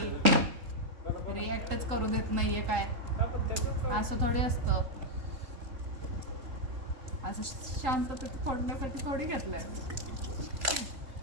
रिॲक्टच करू देत नाहीये. काय असं थोडी असतं. असं शांततेत फोडण्यासाठी थोडी घेतलंय.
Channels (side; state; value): left; late; 3.8 ms